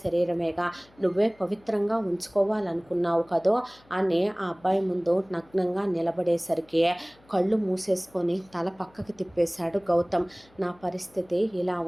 శరీరమేగా, నువ్వే పవిత్రంగా ఉంచుకోవాలనుకున్నావు కదో అని ఆ అబ్బాయి ముందు నగ్నంగా నిలబడేసరికి కళ్ళు మూసేసుకొని తల పక్కకి తిప్పేశాడు గౌతమ్. నా పరిస్థితి ఇలా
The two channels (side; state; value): left; noise; hum, 30 dB below the sound